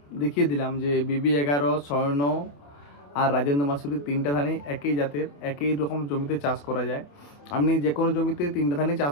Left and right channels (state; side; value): late; right; 28 ms